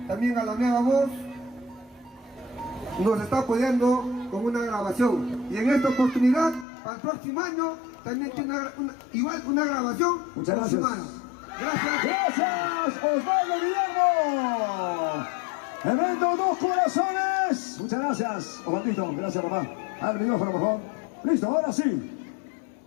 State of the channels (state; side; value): drops out; right; at 6.7 s